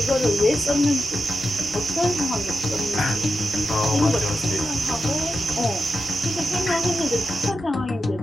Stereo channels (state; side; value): normal; both; correlation 0.89